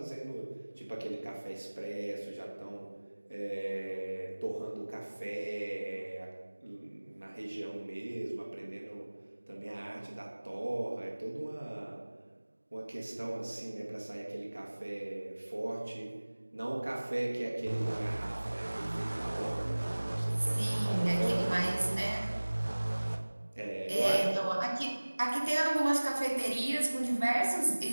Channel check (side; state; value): both; inverted; correlation -1.00